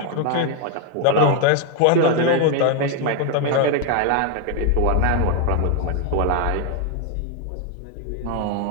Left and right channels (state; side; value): different; both; correlation 0.01